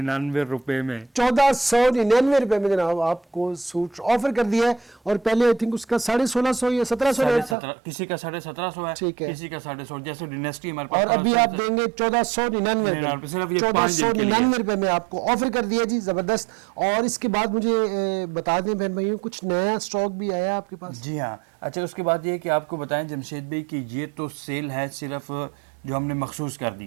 रुपए में। 1499 रुपए में जनाब आपको सूट ऑफर कर दिया है, और पहले आई थिंक उसका 1650 या 1700 रेट था। 17,500 किसी का 1750 है, ठीक है। किसी का 150, जैसे डिनेस्टी हमारे पास और अभी आप देंगे 1499 सिर्फ रुपए, ये 5 दिन के लिए। 1499 रुपए में आपको ऑफर कर दिया जी, जबरदस्त। और इसके बाद मुझे बता दें बहन भाइयों, कुछ नया स्टॉक भी आया आपके पास? जी हाँ। अच्छा, उसके बाद ये कि आपको बताएं जमशेद भाई कि ये तो सेल है सिर्फ जो हमने मखसूस कर दी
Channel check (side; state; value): left; drops out; at 7.6 s